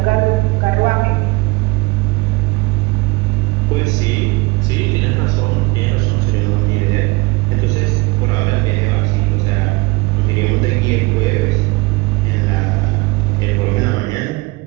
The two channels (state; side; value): quieter; left; 23.8 dB